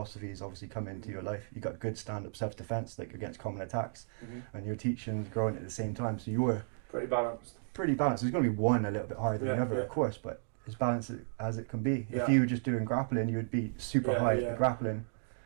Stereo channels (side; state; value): left; silent; digital silence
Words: obviously come into your life. You got good stand-up self-defense, like against common attacks, and your teaching's growing at the same time, so you're pretty balanced. There's going to be one a little bit higher than the other, of course, but as balanced as it can be. If you were just doing grappling, you would be super high at grappling.